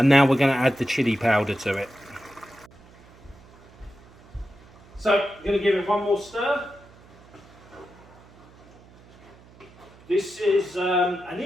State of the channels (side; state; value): right; noise; hum, 24 dB below the sound